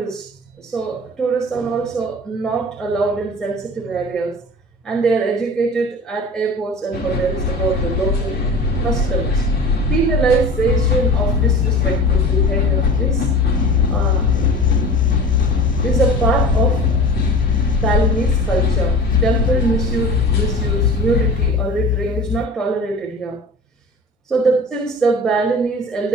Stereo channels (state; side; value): normal; both; correlation 0.38